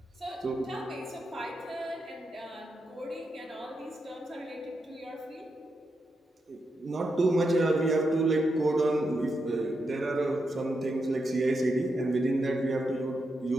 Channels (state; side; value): normal; both; correlation 0.85